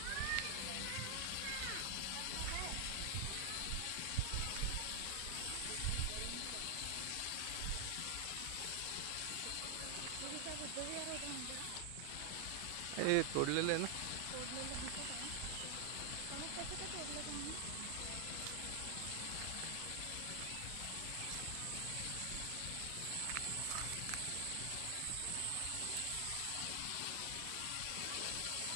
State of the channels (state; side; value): different; both; correlation 0.00